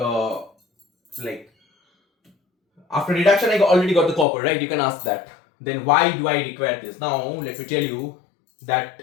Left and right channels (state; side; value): drops out; right; at 4.2 s